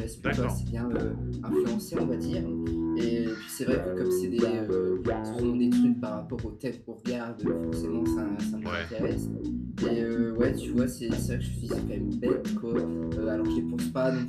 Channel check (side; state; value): both; identical; correlation 1.00